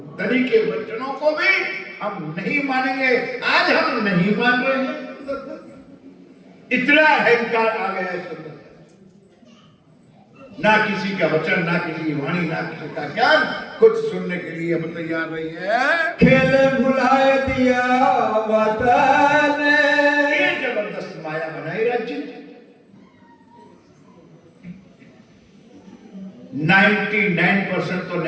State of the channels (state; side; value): identical; both; correlation 1.00